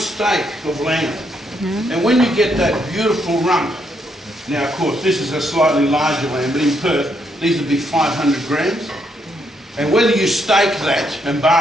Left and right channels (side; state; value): both; normal; correlation 0.76